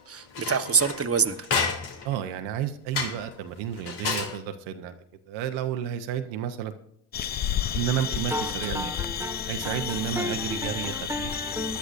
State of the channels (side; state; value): both; normal; correlation 0.06